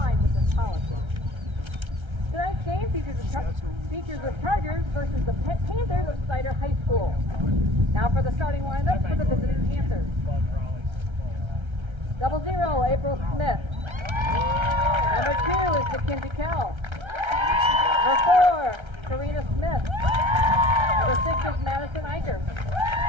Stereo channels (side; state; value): left; late; 1.3 ms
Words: with this policy. Tonight's game features the Chargers versus the Panthers of Snider High School. Now for the starting lineup for the visiting Panthers. 00, April Smith. Number 2 is Mackenzie Carroll. Number 4, Karina Smith. Number 6 is Madison Eicher.